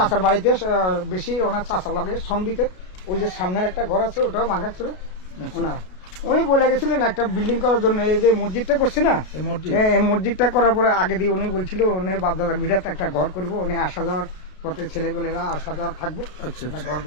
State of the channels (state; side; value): late; right; 32 ms